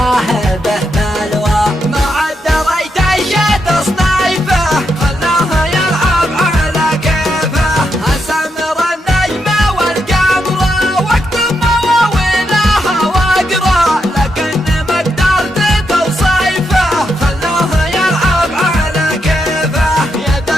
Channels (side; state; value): both; normal; correlation 0.82